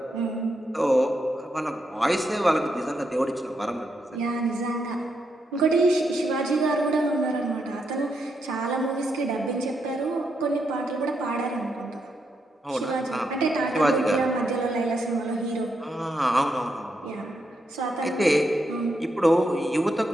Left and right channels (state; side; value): normal; both; correlation 0.81